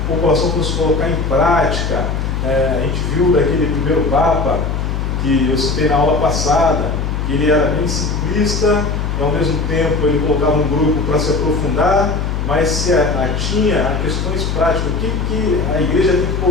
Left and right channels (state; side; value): noise; left; hum, 2 dB below the sound